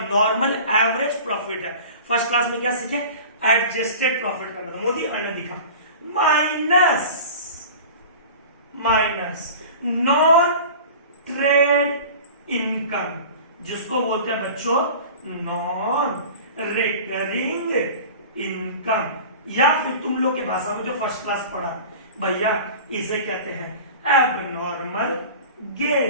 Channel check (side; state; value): both; inverted; correlation -0.38